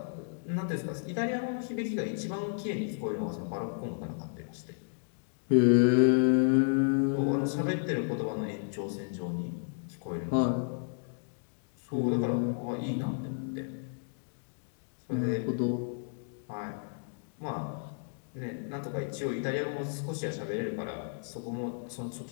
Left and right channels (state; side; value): silent; right; digital silence